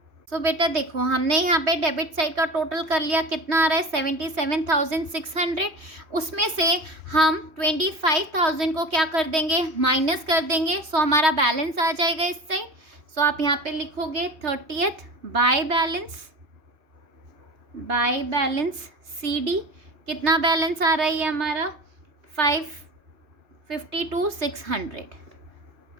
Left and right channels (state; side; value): late; left; 3.2 ms